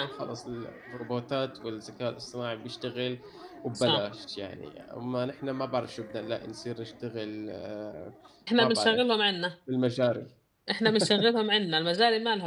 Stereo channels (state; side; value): identical; both; correlation 1.00